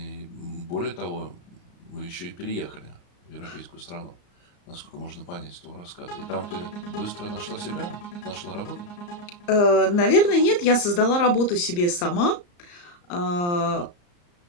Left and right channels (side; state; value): right; late; 34 ms